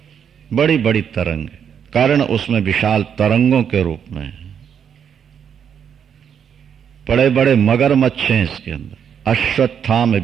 बड़ी बड़ी तरंग, कारण उसमें विशाल तरंगों के रूप में है। बड़े बड़े मगरमच्छ हैं इसके अंदर। अश्वत्थाम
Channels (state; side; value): quieter; left; 7.9 dB